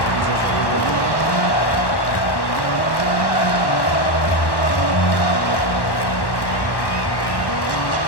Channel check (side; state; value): right; late; 1.1 ms